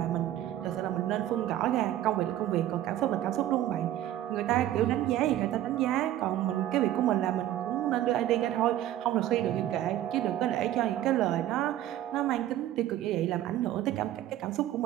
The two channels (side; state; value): left; quieter; 12.9 dB